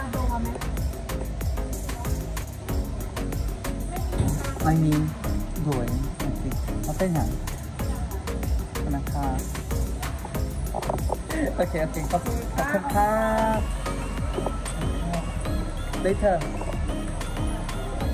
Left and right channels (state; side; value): identical; both; correlation 1.00